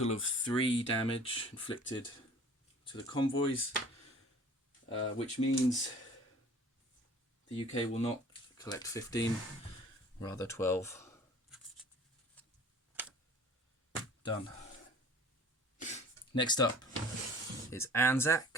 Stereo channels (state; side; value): normal; both; correlation 0.47